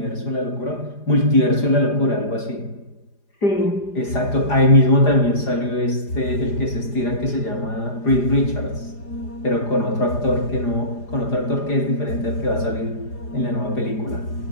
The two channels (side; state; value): right; late; 4.9 ms